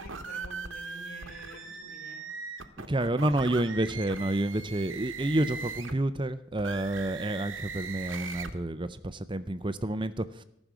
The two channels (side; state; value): both; normal; correlation 0.74